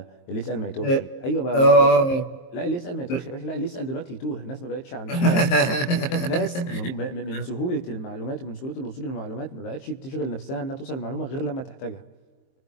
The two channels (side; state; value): right; late; 23 ms